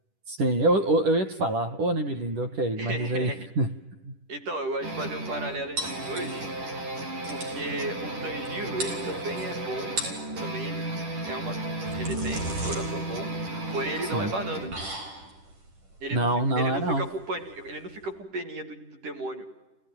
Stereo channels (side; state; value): left; late; 10 ms